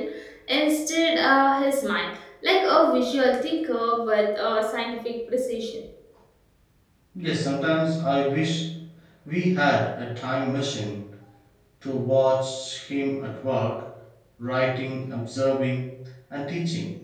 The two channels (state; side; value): identical; both; correlation 1.00